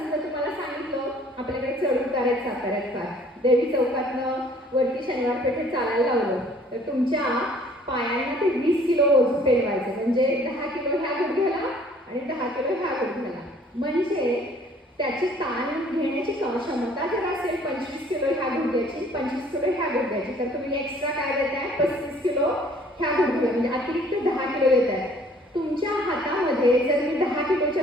तुम्हाला सांगितलं आपल्याकडे चढ उतार आहेत साताऱ्यात फार, देवी चौकातनं वरती शनिवार पेठेत चालायला लावलं तर तुमच्या पायांना ते 20 किलो ओझं पेलवायचं. म्हणजे 10 किलो ह्या गुडघ्याला आणि 10 किलो ह्या गुडघ्याला. म्हणजे त्याची ताण घेण्याची क्षमता जर असेल 25 किलो ह्या गुडघ्याची, 25 किलो ह्या गुडघ्याची, तर तुम्ही एक्स्ट्रा काय देताय 35 किलो ह्या गुडघ्याला, म्हणजे अतिरिक्त 10 किलो देताय. तुमच्या हातामध्ये जर मी 10 किलोच्या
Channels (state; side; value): normal; both; correlation 0.56